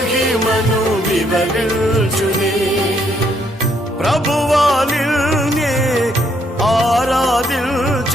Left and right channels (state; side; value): normal; both; correlation 0.71